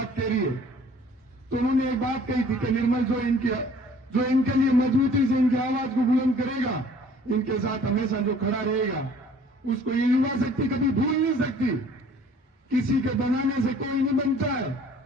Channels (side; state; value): both; normal; correlation 0.53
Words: कह रही है। तो उन्होंने एक बात कही थी कि निर्मल जो इनके लिए मजबूती से इनकी आवाज को बुलंद करेगा, इनके साथ हमेशा जो खड़ा रहेगा, उसको ये युवा शक्ति कभी भूल नहीं सकती। किसी के बनाने से कोई नहीं बनता है।